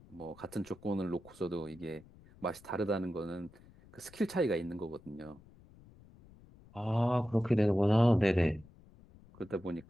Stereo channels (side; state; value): left; noise; rumble, 24 dB below the sound